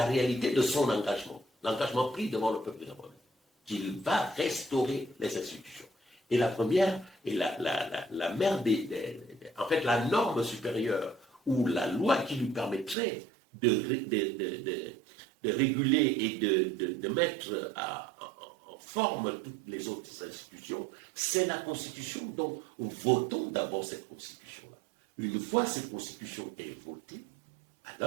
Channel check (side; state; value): left; drops out; at 13.0 s